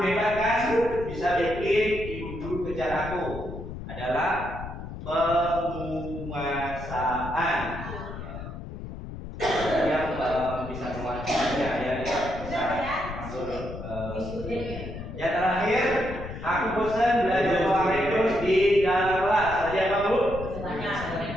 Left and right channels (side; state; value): left; noise; rumble, 10 dB below the sound